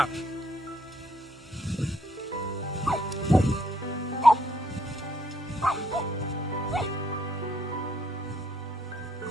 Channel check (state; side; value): normal; both; correlation 0.70